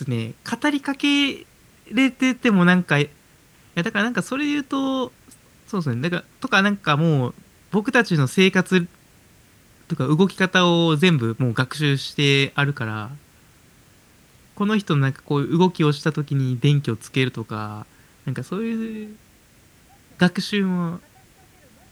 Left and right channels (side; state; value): both; identical; correlation 1.00